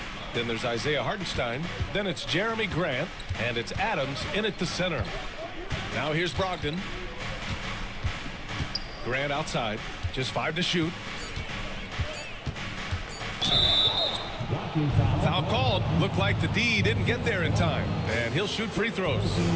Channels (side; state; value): both; identical; correlation 1.00